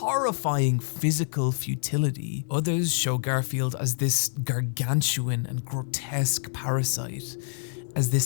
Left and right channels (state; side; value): silent; right; digital silence